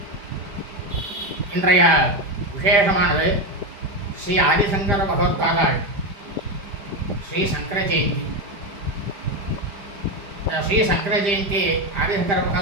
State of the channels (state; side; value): late; left; 5.0 ms